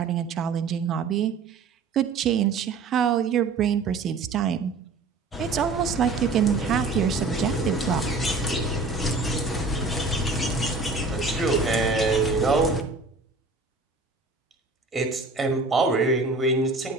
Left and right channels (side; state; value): left; quieter; 3.9 dB